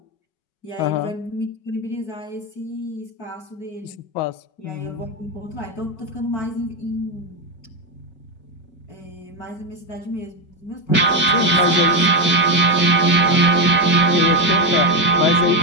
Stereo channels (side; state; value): right; late; 5.3 ms